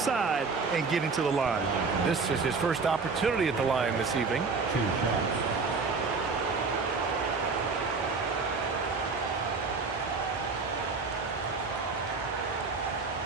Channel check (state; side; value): quieter; left; 4.5 dB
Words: and getting to the line. This is his first opportunity at the line this evening. 2 shots.